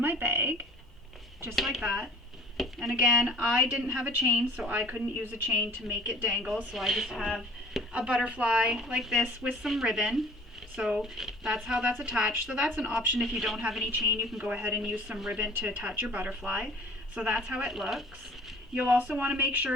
my bag, just like that. And again, I didn't have a chain, so I couldn't use a chain to make it dangle, so I just have a butterfly like this with some ribbon. So that's how that's attached. So that's an option. If you don't have any chain, you can go ahead and use some ribbon to attach your butterfly. So that's how it looks. You'll also want to make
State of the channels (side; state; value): both; normal; correlation 0.49